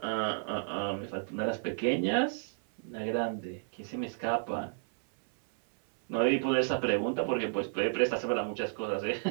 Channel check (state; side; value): silent; left; 56 dB below the other